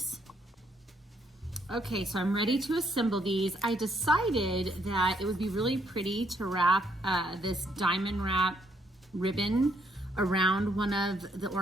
Okay, so I'm ready to assemble these. I decided that it would be really pretty to wrap this diamond wrap ribbon around one of the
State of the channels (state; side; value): normal; both; correlation 0.72